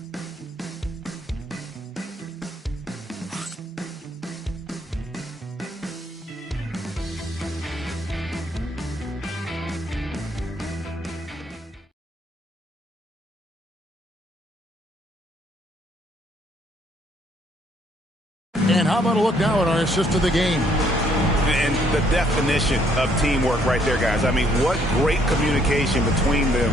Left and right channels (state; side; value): normal; both; correlation 0.67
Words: And how about a look now at our assist of the game? And the definition of teamwork right there, guys. I mean, what great communication between